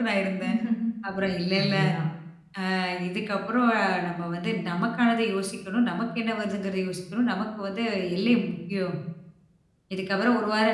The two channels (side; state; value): both; identical; correlation 1.00